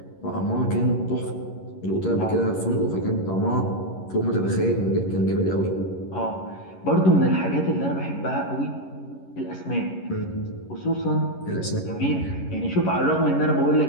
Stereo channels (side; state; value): right; late; 11 ms